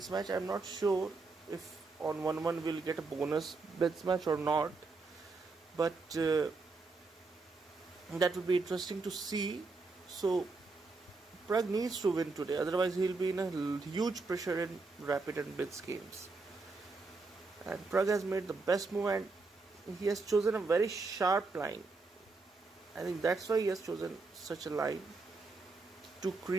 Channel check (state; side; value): quieter; left; 3.9 dB